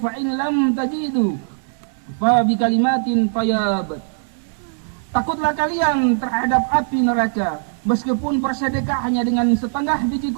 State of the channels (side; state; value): left; silent; 64 dB below the other